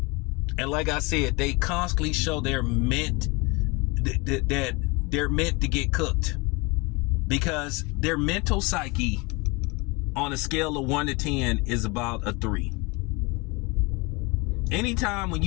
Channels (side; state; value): right; quieter; 26.9 dB